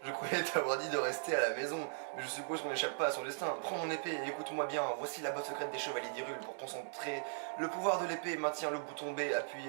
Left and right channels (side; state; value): left; silent; digital silence